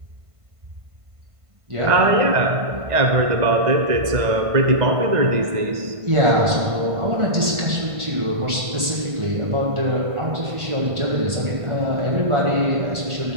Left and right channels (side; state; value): left; late; 1.5 ms